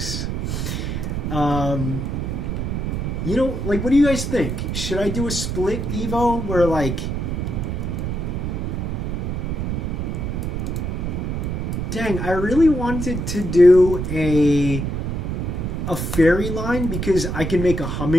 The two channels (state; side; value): noise; right; rumble, 2 dB below the sound